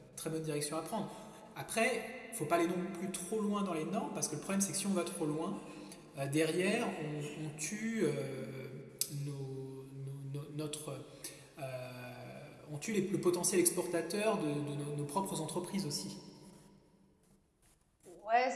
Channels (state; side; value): identical; both; correlation 1.00